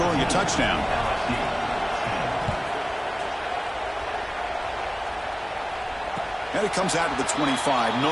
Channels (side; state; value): both; identical; correlation 1.00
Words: a touchdown. And it comes out to the 25.